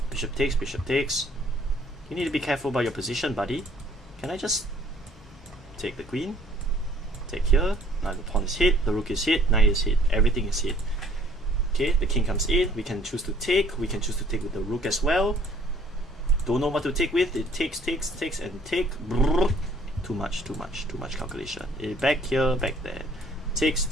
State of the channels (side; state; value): both; normal; correlation 0.59